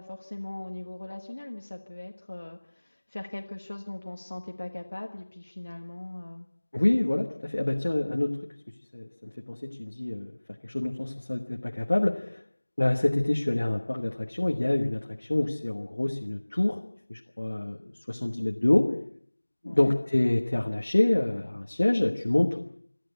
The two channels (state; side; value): inverted; both; correlation -1.00